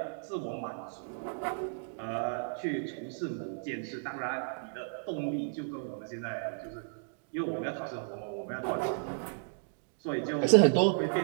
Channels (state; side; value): silent; left; digital silence